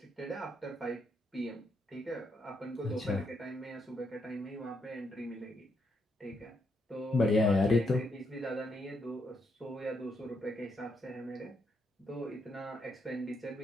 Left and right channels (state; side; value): normal; both; correlation 0.78